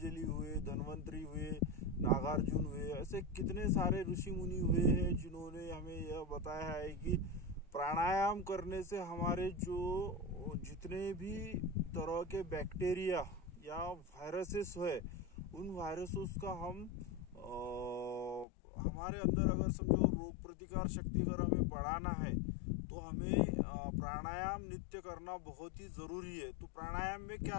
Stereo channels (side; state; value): right; drops out; at 18.4 s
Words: हुए, धन्वंतरी हुए, नागार्जुन हुए, ऐसे कितने सारे ऋषि मुनि हुए हैं जिन्होंने हमें यह बताया है कि प्राणायाम करने से हमारे जो जितने भी तरह के बैक्टीरिया या वायरसेस है, उन वायरसेस का हमारे अंदर अगर समझो रोग प्रतिकार शक्ति अगर हमें बढ़ाना है तो हमें प्राणायाम नित्य करना बहुत ही ज़रूरी है। तो प्राणायाम में